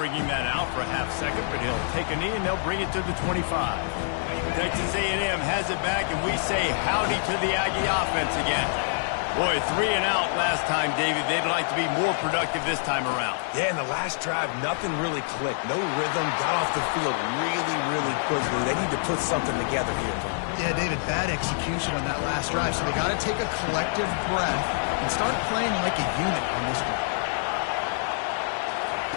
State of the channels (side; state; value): right; silent; digital silence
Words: that out for a half second, but he'll take a knee and they'll bring it to the 25. Texas A&M has it back, and we say howdy to the Aggie offense again. Boy, 3 and out last time, David. They'd like to be more productive this time around. Yeah, in the last drive, nothing really clicked. No rhythm, got off the field really, really quickly. They need to put something together here. Yeah, David, bad execution on that last drive, so they got to take a collective breath and start playing like a unit on this one.